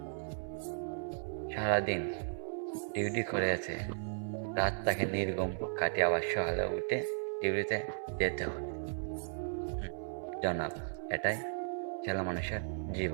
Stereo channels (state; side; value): silent; left; 54 dB below the other